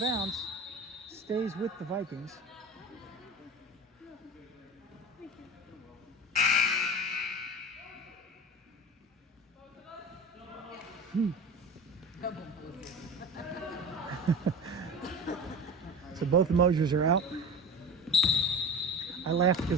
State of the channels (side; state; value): both; normal; correlation 0.32